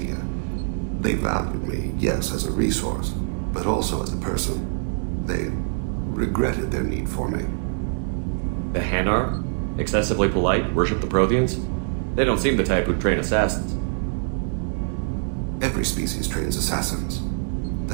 They valued me, yes, as a resource, but also as a person. They regretted their need for me. The Hanar? Excessively polite, worship the Protheans? They don't seem the type who'd train assassins. Every species trains assassins.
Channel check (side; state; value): left; silent; digital silence